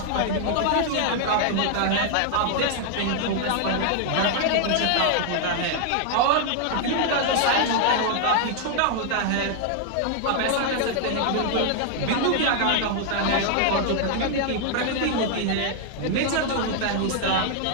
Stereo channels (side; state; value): both; different; correlation 0.00